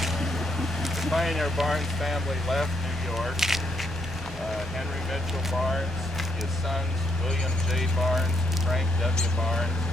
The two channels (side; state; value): both; normal; correlation 0.76